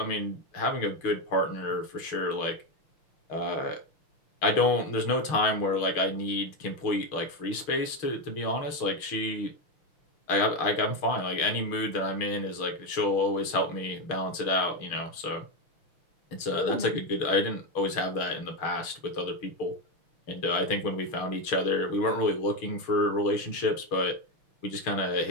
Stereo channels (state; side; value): late; right; 6.5 ms